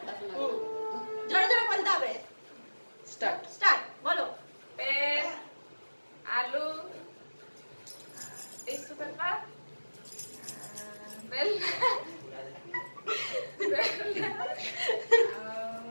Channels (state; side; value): inverted; both; correlation -1.00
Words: হুম। জোরে জোরে বলতে হবে। স্টার্ট। স্টার্ট, বলো। পেন, আলু, টিস্যু পেপার, বেল,